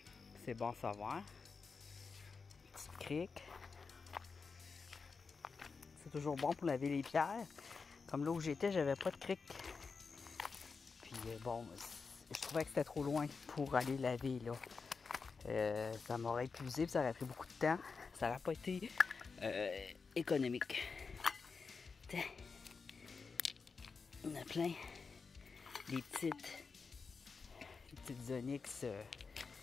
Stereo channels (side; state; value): right; quieter; 4.9 dB